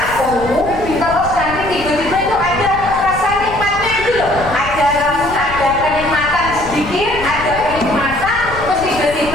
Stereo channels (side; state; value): left; noise; rumble, 12 dB below the sound